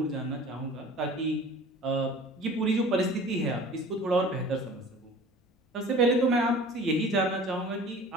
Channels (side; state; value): both; normal; correlation 0.43